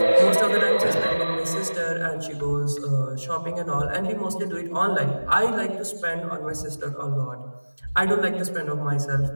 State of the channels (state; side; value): inverted; both; correlation -1.00